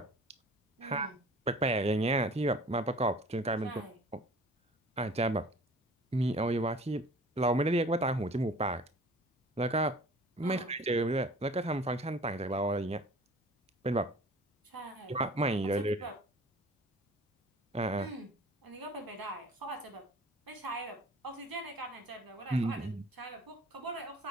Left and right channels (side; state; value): both; normal; correlation 0.46